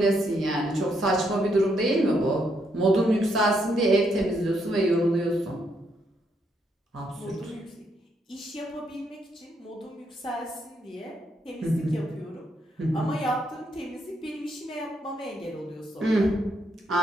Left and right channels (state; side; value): normal; both; correlation 0.76